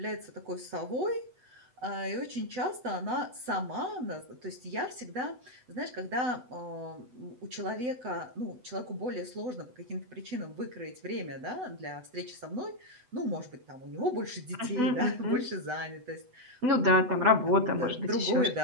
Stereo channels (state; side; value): late; left; 8.0 ms